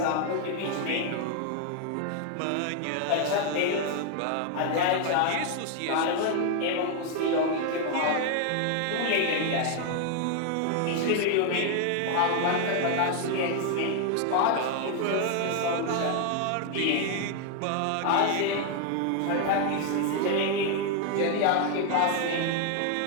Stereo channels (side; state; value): both; different; correlation 0.01